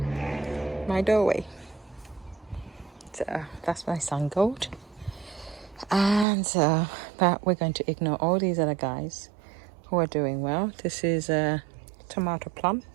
my doorway. So that's my sun gold. And but we're going to ignore all these other guys who are doing well. This is a tomato plum.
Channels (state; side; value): drops out; left; at 6.2 s